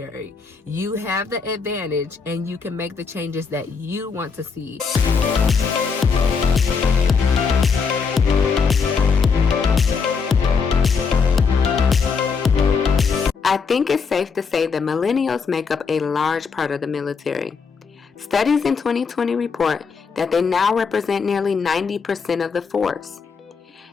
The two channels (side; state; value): right; quieter; 5.4 dB